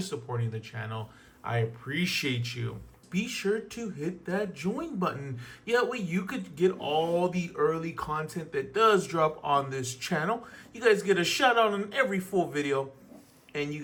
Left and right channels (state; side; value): identical; both; correlation 1.00